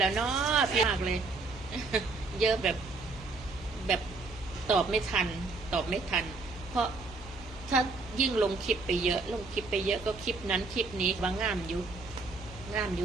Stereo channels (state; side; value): quieter; left; 3.8 dB